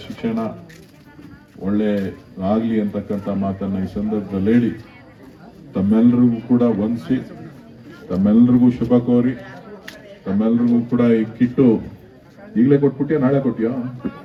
ಶಿಕ್ಷಣ ಒಳ್ಳೆ ಆಗಲಿ ಅಂತಕ್ಕಂಥ ಮಾತನ್ನ ಈ ಸಂದರ್ಭದಲ್ಲಿ ಹೇಳಿ, ತಮ್ಮೆಲ್ಲರಿಗೂ ಕೂಡ ವಂದಿಸಿ, ತಮ್ಮೆಲ್ಲರಿಗೂ ಶುಭ ಕೋರಿ, ತಮ್ಮೆಲ್ಲರಿಗೂ ಕೂಡ ಈ ಕಿಟ್ಟು ಈಗಲೇ ಕೊಟ್ಬಿಟ್ಟಿಯೋ ನಾಳೆ ಕೊಟ್ಟಿಯೋ?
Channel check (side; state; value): both; identical; correlation 1.00